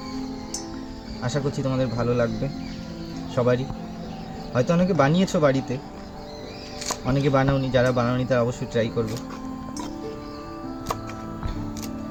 আশা করছি তোমাদের ভালো লাগবে সবারই। হয়তো অনেকে বানিয়েছো বাড়িতে, অনেকে বানাওনি, যারা বানাওনি তারা অবশ্যই ট্রাই করবে।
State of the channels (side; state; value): both; identical; correlation 1.00